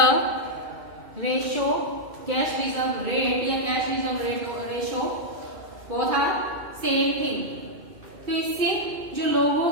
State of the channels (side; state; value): left; late; 2.6 ms